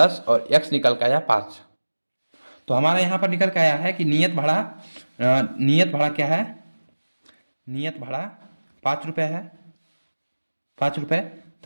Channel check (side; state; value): both; inverted; correlation -1.00